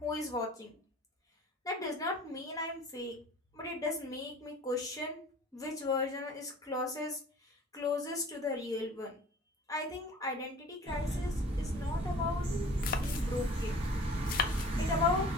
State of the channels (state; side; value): normal; both; correlation 0.45